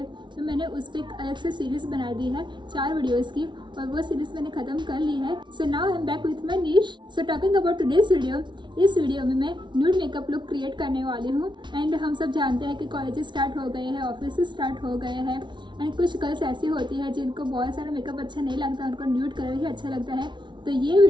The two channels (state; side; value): late; left; 0.23 ms